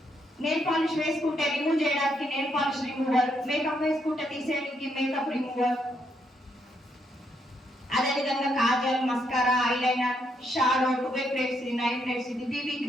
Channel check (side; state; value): both; normal; correlation 0.76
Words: నెయిల్ పాలిష్ వేసుకుంటే రిమూవ్ చేయడానికి నెయిల్ పాలిష్ రిమూవర్, మేకప్ వేసుకుంటే తీసేయడానికి మేకప్ రిమూవర్, అదేవిధంగా Kajal, mascara, eyeliner, shadow, 2 plates, 9 plates, ఇది బీబీ